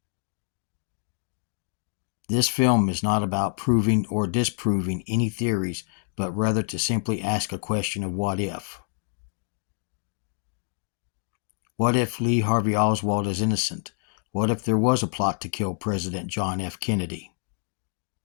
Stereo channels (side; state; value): right; silent; 60 dB below the other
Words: This film is not about proving or disproving any theories, but rather to simply ask a question of what if. What if Lee Harvey Oswald is innocent? What if there was a plot to kill President John F. Kennedy?